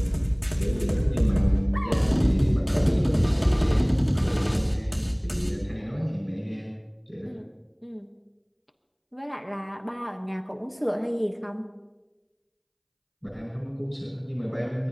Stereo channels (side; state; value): both; identical; correlation 1.00